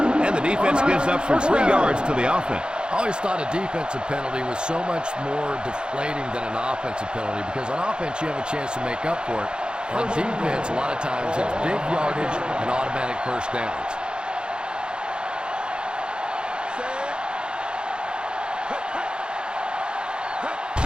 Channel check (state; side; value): late; left; 0.050 ms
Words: And the defense gives up some 3 yards to the offense. I always thought a defensive penalty was so much more deflating than an offensive penalty because on offense you have a chance to make up for it. On defense, a lot of times it's big yardage and automatic first downs.